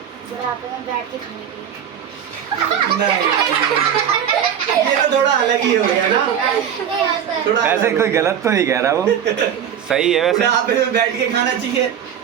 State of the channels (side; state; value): left; quieter; 8.8 dB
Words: बुढ़ापे में बैठ के खाने के लिए। नहीं, ये तो थोड़ा अलग ही हो गया ना। थोड़ा वैसे कोई गलत तो नहीं कह रहा वो, सही है वैसे। बुढ़ापे में बैठ के खाना चाहिए।